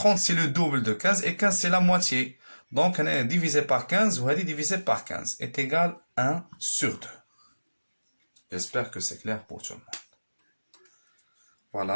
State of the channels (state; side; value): inverted; both; correlation -1.00